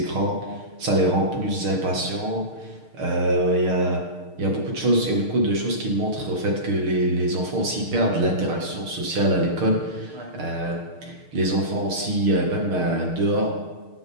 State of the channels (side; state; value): left; late; 6.5 ms